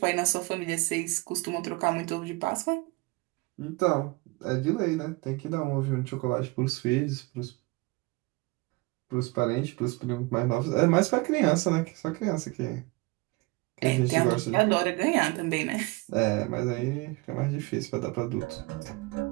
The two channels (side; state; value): left; quieter; 24.2 dB